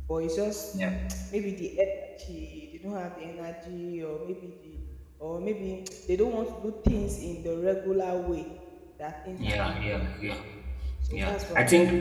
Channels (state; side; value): identical; both; correlation 1.00